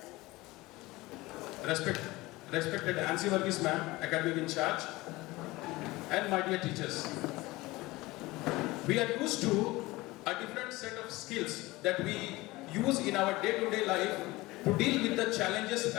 respected Ancy Varghese ma'am, academic in charge, and my dear teachers. We are used to a different set of skills that we use in our day-to-day life to deal with the challenges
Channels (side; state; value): right; quieter; 20.4 dB